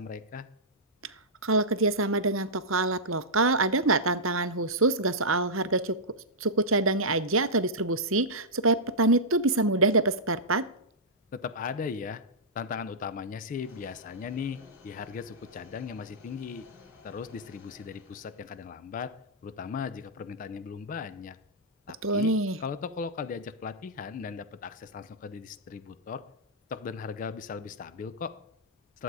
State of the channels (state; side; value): normal; both; correlation -0.13